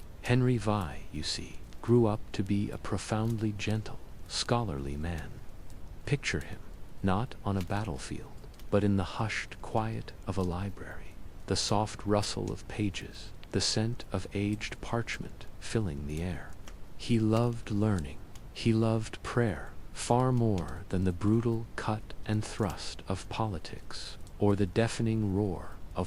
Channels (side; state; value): both; identical; correlation 1.00